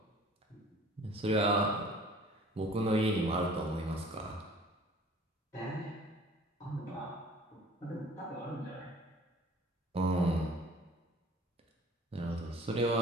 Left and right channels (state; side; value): normal; both; correlation 0.50